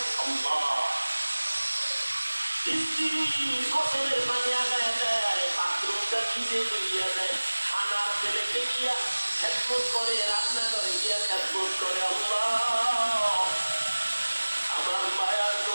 আল্লাহ, স্ত্রী ফসলের পানি আগায় দেয়, বাথরুমটা ভিজে ধুইয়া দেয়, খানার ছেলেকে গিয়া খেদমত করে, রান্না করে গিয়া খেদমত করে। আল্লাহ আমার মায়ার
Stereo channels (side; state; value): both; inverted; correlation -1.00